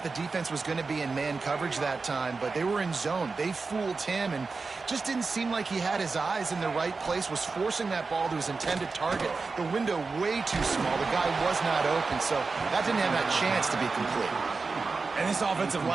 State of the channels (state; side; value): quieter; left; 4.2 dB